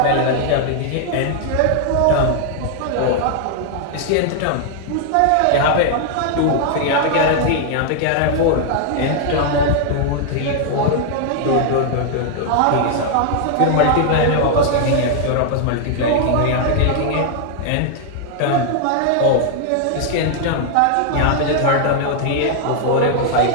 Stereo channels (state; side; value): different; both; correlation 0.00